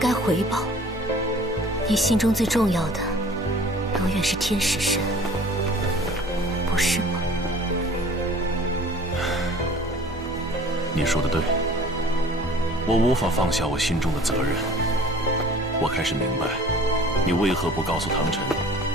回报。你心中最重要的，永远是天使神，不是吗？你说的对。我无法放下我心中的责任。我开始明白，你为何不告诉唐晨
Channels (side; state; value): both; normal; correlation 0.48